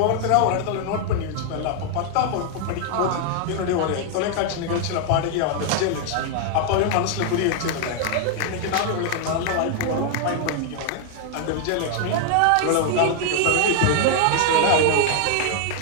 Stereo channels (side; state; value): both; different; correlation 0.00